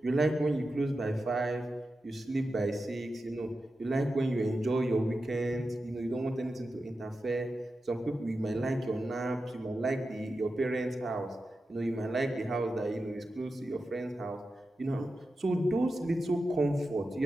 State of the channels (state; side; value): normal; both; correlation 0.91